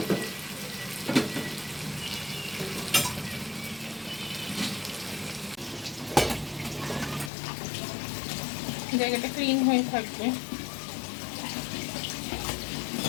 জায়গাটা ক্লিন হয়ে থাকবে।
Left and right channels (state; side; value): drops out; right; at 7.3 s